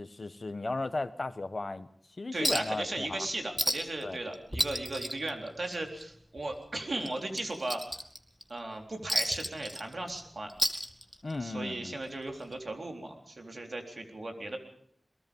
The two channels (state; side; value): normal; both; correlation 0.95